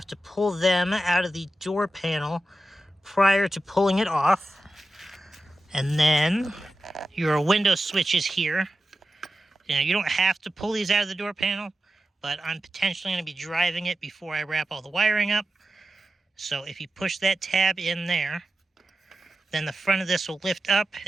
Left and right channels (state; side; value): normal; both; correlation 0.92